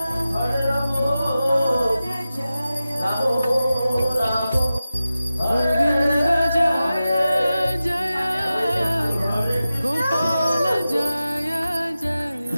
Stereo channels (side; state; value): both; inverted; correlation -0.94